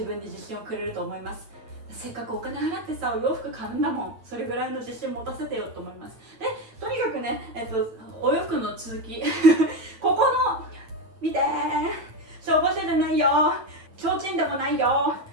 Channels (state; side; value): late; left; 8.8 ms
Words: 分に自信をくれると思います。せっかくお金払ってさお洋服買うんだもん、それぐらいの自信持たせてよと思います。でとにかくね、お洋服の続きここの見て消防車じゃないよ、提灯でもないよ、